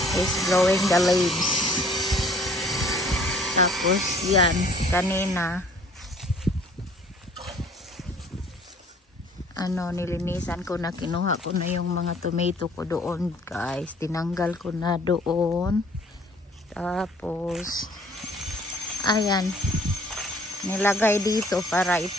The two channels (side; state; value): both; normal; correlation 0.56